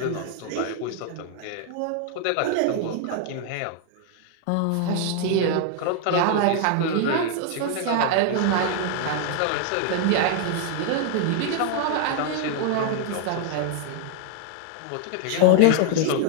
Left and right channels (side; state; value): both; different; correlation 0.00